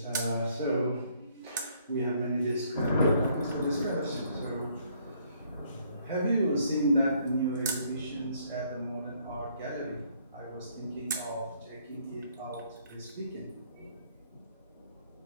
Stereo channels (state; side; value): inverted; both; correlation -0.66